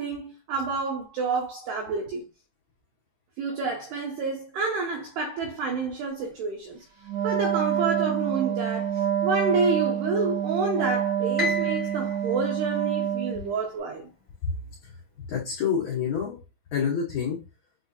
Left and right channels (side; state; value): left; quieter; 4.0 dB